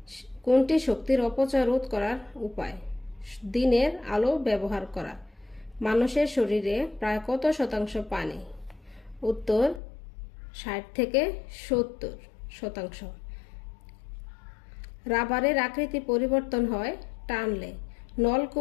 কোনটি শক্তির অপচয় রোধ করার উপায়? দিনের আলো ব্যবহার করা। মানুষের শরীরে প্রায় কত শতাংশ পানি? উত্তর 60 থেকে 70%। রাবারের আকৃতি পরিবর্তন হয় টানলে।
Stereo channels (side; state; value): right; drops out; at 9.8 s